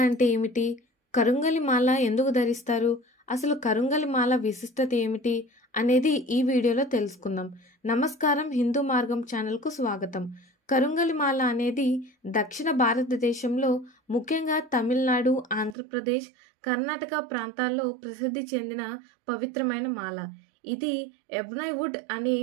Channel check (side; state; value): left; drops out; at 15.8 s